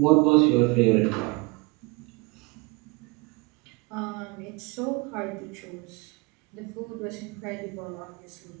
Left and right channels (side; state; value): left; quieter; 27.1 dB